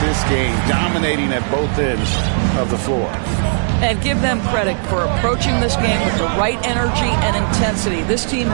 game, dominating at both ends of the floor. And give them credit for approaching this game with the right energy and intensity. This team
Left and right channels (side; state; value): left; silent; digital silence